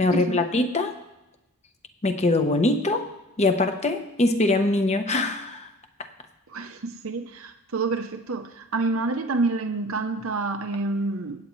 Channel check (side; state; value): both; normal; correlation 0.46